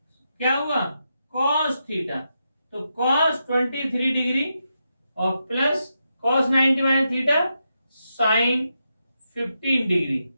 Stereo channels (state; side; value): inverted; both; correlation -0.85